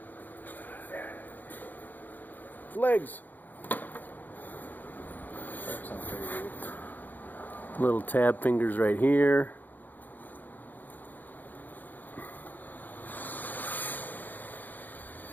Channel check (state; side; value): late; right; 0.086 ms